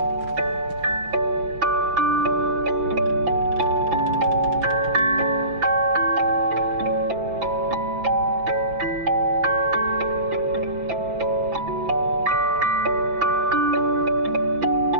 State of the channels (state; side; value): late; left; 5.9 ms